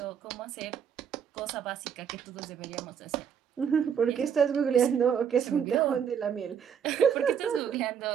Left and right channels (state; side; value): quieter; left; 7.8 dB